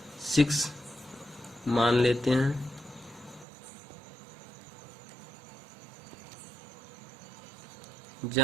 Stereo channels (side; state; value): left; drops out; at 3.5 s